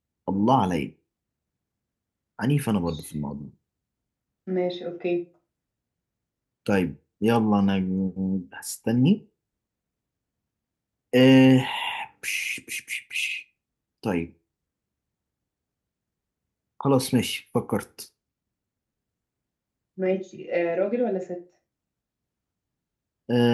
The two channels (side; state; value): both; identical; correlation 1.00